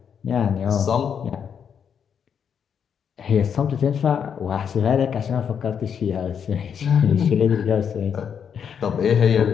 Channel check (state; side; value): quieter; right; 7.6 dB